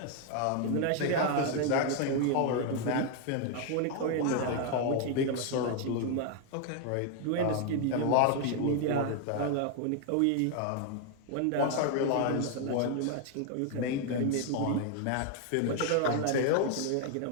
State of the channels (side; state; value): both; different; correlation 0.00